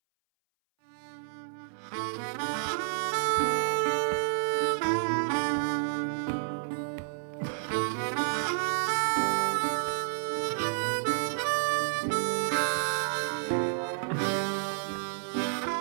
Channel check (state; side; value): silent; left; 58 dB below the other